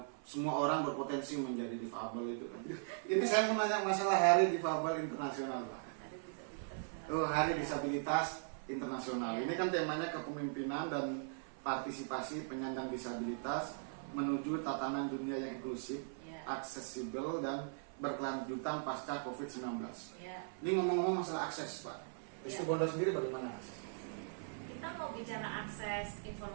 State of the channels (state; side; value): silent; left; 52 dB below the other